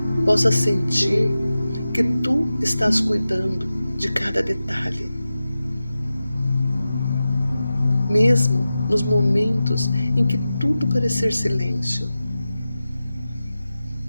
possa sentir que Tu estás cuidando de cada detalhe, mesmo nos momentos em que tudo parecer silêncio,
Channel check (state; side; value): inverted; both; correlation -0.94